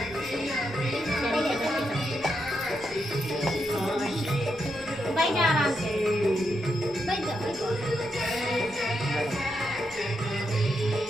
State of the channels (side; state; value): both; normal; correlation 0.83